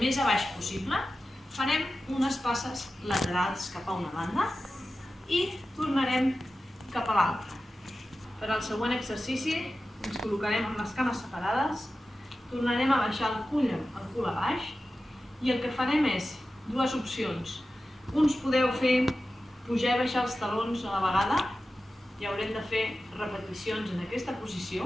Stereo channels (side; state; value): both; normal; correlation 0.94